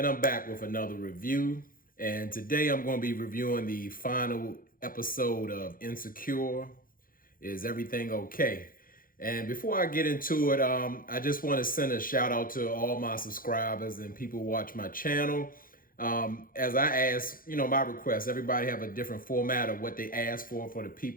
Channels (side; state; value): right; late; 0.41 ms